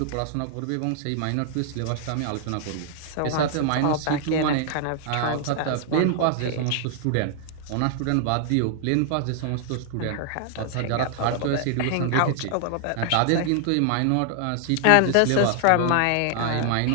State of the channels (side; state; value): both; different; correlation 0.00